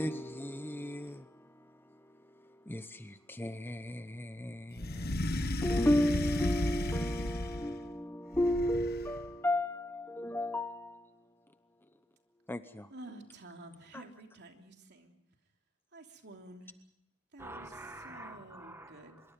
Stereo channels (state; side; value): normal; both; correlation 0.86